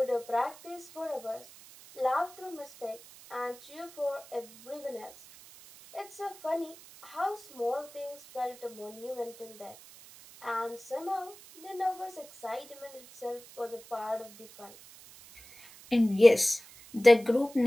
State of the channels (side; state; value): right; noise; hiss, 20 dB below the sound